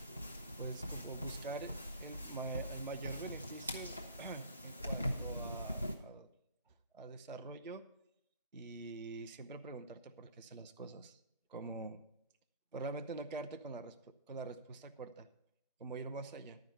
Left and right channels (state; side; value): inverted; both; correlation -0.50